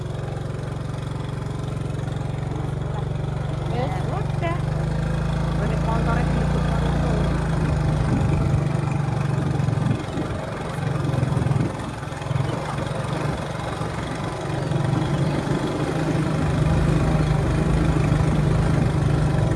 Udah. Golek montore dilebur.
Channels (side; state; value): both; identical; correlation 1.00